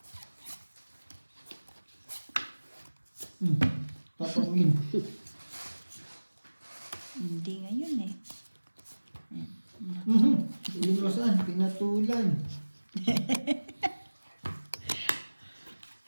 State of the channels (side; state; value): both; inverted; correlation -1.00